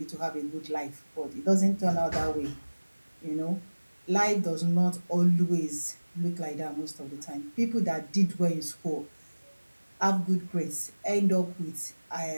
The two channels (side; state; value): both; inverted; correlation -1.00